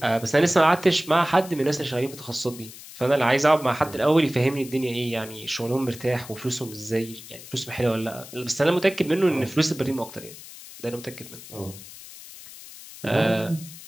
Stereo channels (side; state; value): left; noise; hiss, 16 dB below the sound